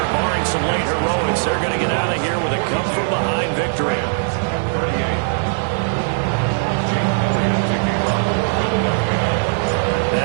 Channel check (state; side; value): silent; left; digital silence